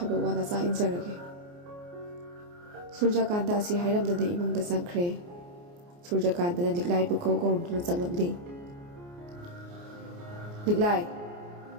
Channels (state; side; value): late; left; 29 ms